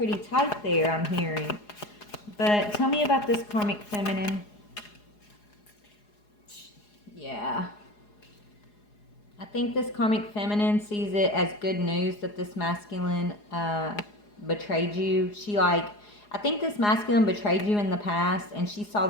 tight there, I'm hearing. But tell me about this karmic feminine. Yeah. I think this karmic feminine sees it as good news that this masculine betrayed you. I think this masculine betrayed you in the past, and she saw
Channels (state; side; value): late; right; 4.8 ms